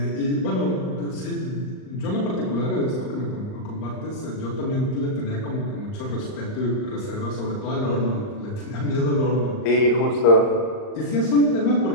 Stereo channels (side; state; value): right; late; 38 ms